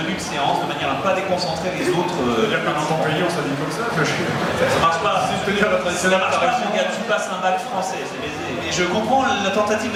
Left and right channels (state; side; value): identical; both; correlation 1.00